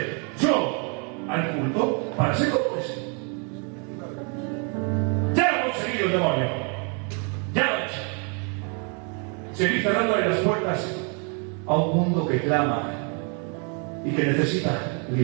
Yo, al culto, para ser como ese. Ya lo ha conseguido el demonio. Ya lo ha hecho. Seguir cerrándole las puertas a un mundo que clama y que necesita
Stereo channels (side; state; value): left; quieter; 37.2 dB